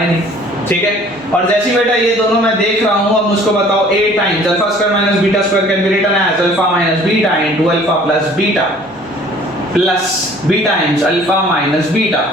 नहीं, ठीक है। और जैसे बेटा ये दोनों मैं देख रहा हूँ, अब मुझको बताओ a times α² minus β² can be written as alpha minus beta into alpha plus beta plus b times alpha minus beta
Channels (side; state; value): right; noise; hum, 30 dB below the sound